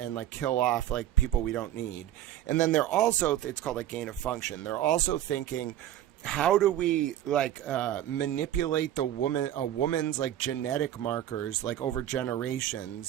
like kill off like people we don't need? And then they're also, it's called like gain of function. They're also thinking, how do we like manipulate a woman's like genetic markers like over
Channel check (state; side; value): quieter; left; 12.3 dB